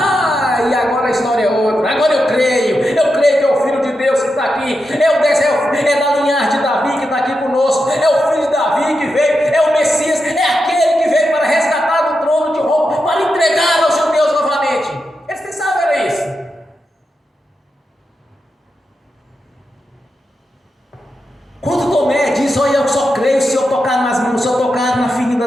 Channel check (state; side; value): normal; both; correlation 0.87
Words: E agora a história é outra. Agora eu creio que é o Filho de Deus que está aqui, é da linhagem de Davi que está aqui conosco, é o Filho de Davi que veio, é o Messias, é aquele que veio para resgatar do trono de Roma, para entregar aos judeus novamente. Eles pensavam que era isso. Quando Tomé diz: olha, eu só creio se eu tocar nas mãos, se eu tocar na ferida